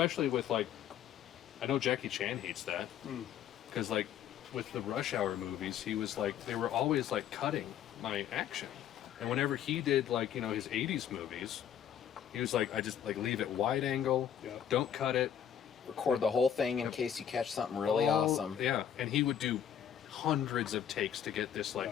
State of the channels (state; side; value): quieter; right; 9.4 dB